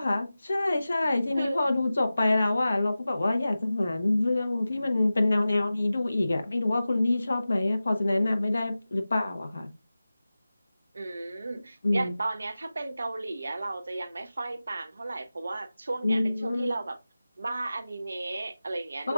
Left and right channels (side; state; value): both; inverted; correlation -0.95